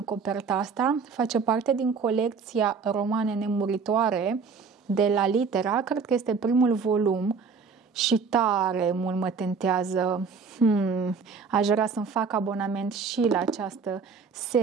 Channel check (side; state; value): left; quieter; 5.3 dB